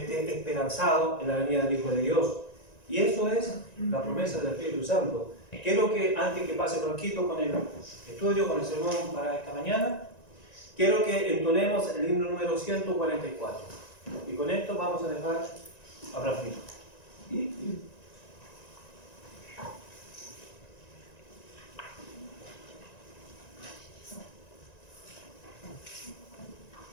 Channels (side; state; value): right; late; 1.9 ms